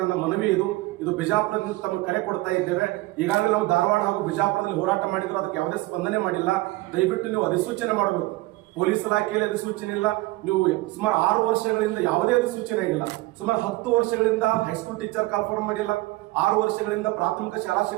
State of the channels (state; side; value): quieter; left; 20.0 dB